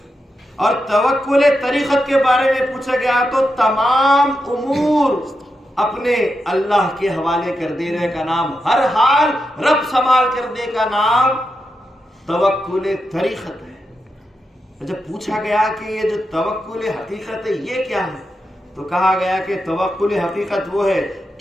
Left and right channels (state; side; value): normal; both; correlation 0.87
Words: اور توکل طریقت کے بارے میں پوچھا گیا تو تمام امور اپنے اللہ کے حوالے کر دینے کا نام، ہر حال رب سنبھال کرنے کا نام توکل طریقت ہے. جب پوچھا گیا کہ یہ جو توکل حقیقت ہے یہ کیا ہے، تو کہا گیا کہ توکل حقیقت وہ ہے